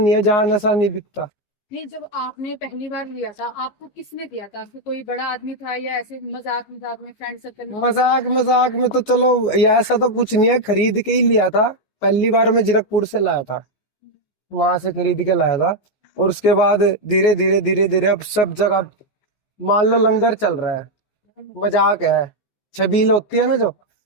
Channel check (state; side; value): late; right; 15 ms